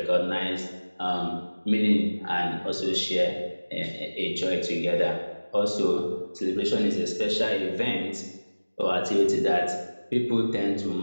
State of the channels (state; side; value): inverted; both; correlation -1.00